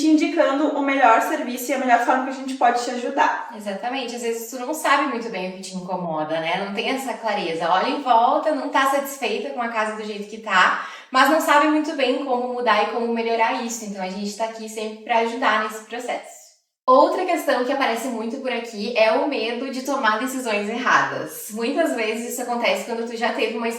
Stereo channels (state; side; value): identical; both; correlation 1.00